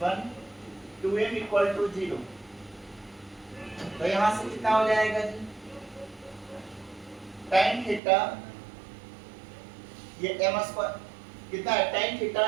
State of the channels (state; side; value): drops out; left; at 8.0 s